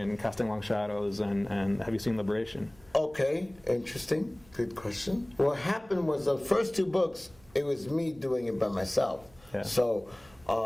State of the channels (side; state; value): right; noise; hum, 27 dB below the sound